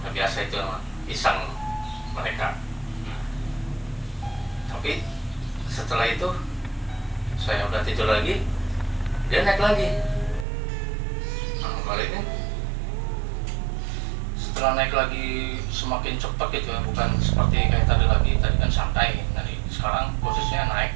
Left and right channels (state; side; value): drops out; left; at 10.5 s